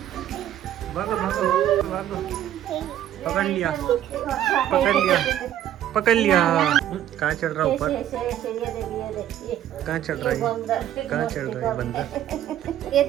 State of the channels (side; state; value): left; quieter; 11.6 dB